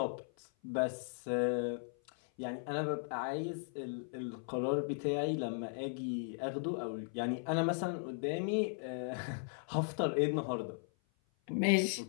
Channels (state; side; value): silent; right; 53 dB below the other